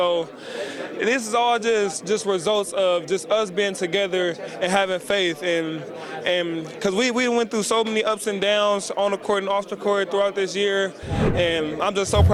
this is all just results of just us being together and having faith. And because we went through so many ups and downs on the court and off the court throughout this year. And I'm just so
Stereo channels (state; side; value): identical; both; correlation 1.00